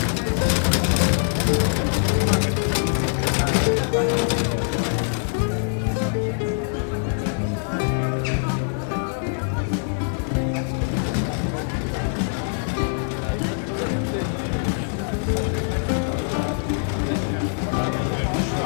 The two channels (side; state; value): right; silent; digital silence